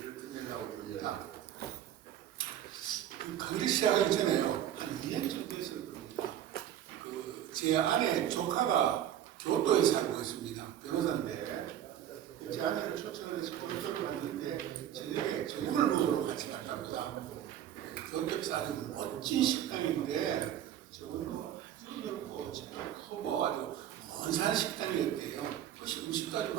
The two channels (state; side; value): quieter; left; 10.9 dB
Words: 끝내려고 합니다. 그 강의를 시작하기 전에요. 한 2년 정도 됐을 겁니다. 제 아내 조카가 교토에 살고 있습니다. 변호사인데 제 아내를 초청을 해서 교토를 갔는데 저녁을 먹으러 같이 갔답니다. 교토에서 아주 멋진 식당인데 저번도 아주 넓고 크고 아주 먼산 식당이었대요. 그래서 음식도 아주